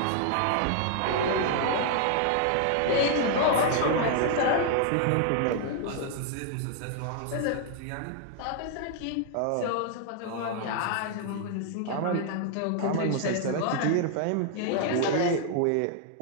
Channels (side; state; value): both; different; correlation -0.01